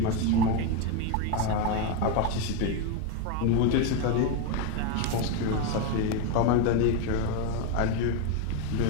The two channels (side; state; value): both; different; correlation 0.03